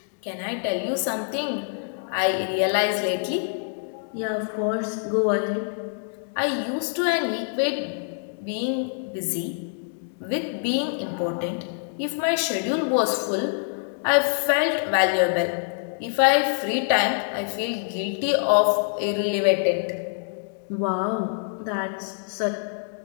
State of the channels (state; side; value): silent; right; digital silence